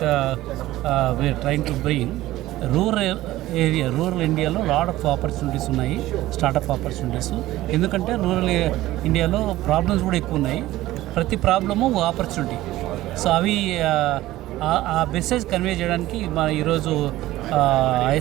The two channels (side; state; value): left; quieter; 16.2 dB